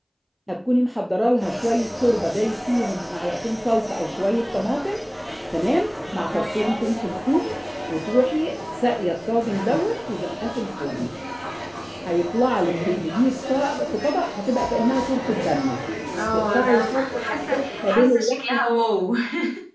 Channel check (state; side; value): identical; both; correlation 1.00